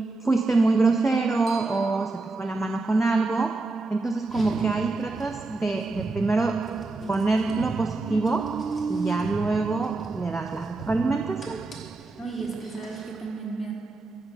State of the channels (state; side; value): quieter; left; 3.3 dB